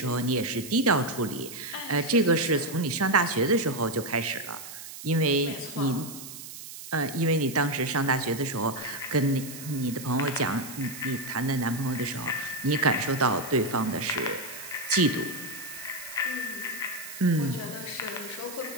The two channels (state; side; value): noise; right; hiss, 12 dB below the sound